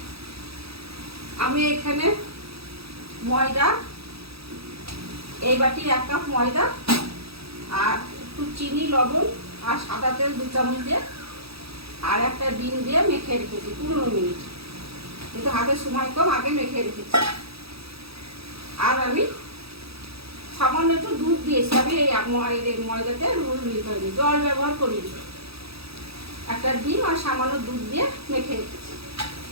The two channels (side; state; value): left; late; 0.77 ms